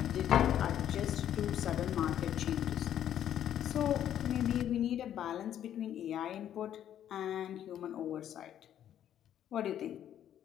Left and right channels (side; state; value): right; quieter; 10.6 dB